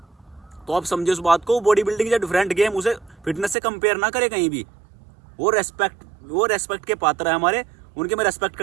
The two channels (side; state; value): left; drops out; at 3.6 s